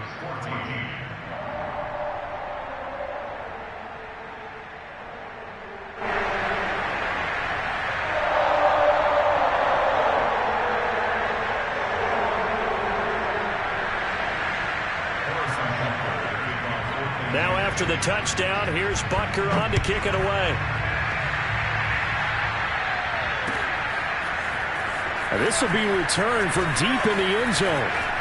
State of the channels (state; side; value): identical; both; correlation 1.00